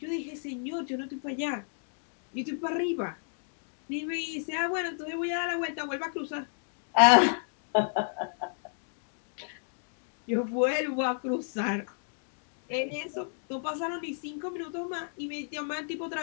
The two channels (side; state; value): right; silent; digital silence